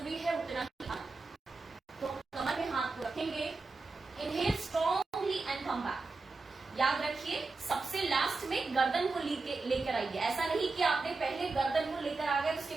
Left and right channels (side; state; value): left; quieter; 3.8 dB